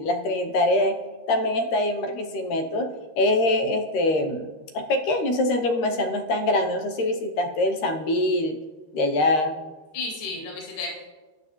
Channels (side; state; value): right; late; 13 ms